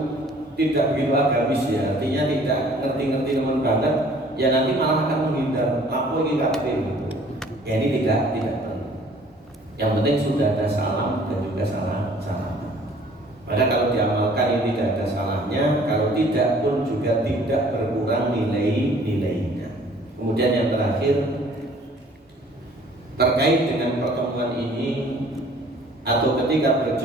tidak begitu agamis ya, artinya tidak ngerti-ngerti teman banget, ya nanti malah akan menghindar. Aku ini kafir gitu. Ya ini tidak perlu. Yang penting sudah ada salam dan juga salam. Maka kalau diamalkan ini tidak ada salahnya, kalau tidak pun juga tidak berkurang nilainya. Kemudian yang terakhir terkait dengan pertemuan ini atau ketika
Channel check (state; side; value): normal; both; correlation 0.54